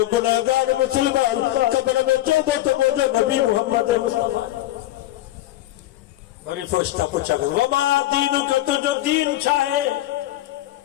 گناہگار مسلمان قبر میں چودو تو مجھے نبی محمد مصطفیٰ بڑی فرشتہ پوچھا گا وما دینو کا تو جو دین چاہے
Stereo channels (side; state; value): right; quieter; 15.3 dB